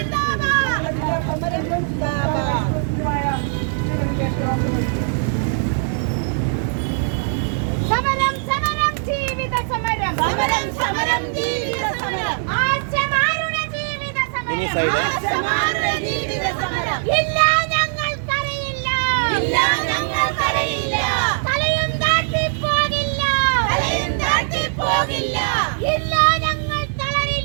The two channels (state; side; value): silent; left; digital silence